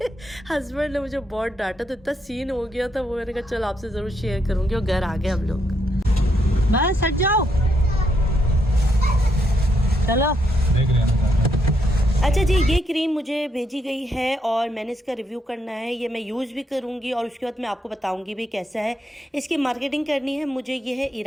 हस्बैंड ने मुझे बहुत डांटा, तो इतना सीन हो गया था वो। मैंने कहा चल आपसे ज़रूर शेयर करूँगी। और घर आ गए हम लोग। बस हट जाओ, चलो। देख रहे हैं। अच्छा जी, ये क्रीम मुझे भेजी गई है और मैंने इसका रिव्यू करना है। ये मैं यूज़ भी करूँगी और उसके बाद मैं आपको बताऊँगी भी कैसा है। इसकी मार्केटिंग करनी है मुझे। ये है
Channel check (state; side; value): normal; both; correlation 0.77